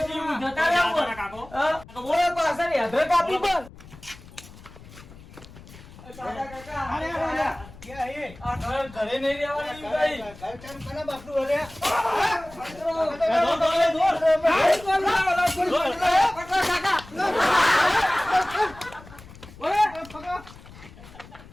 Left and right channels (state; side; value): noise; left; rumble, 19 dB below the sound